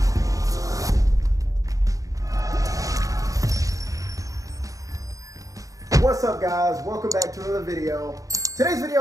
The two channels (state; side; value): late; left; 0.16 ms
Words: What's up, guys? Welcome back to another video. Today's